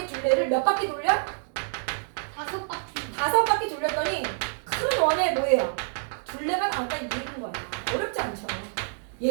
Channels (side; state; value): left; silent; digital silence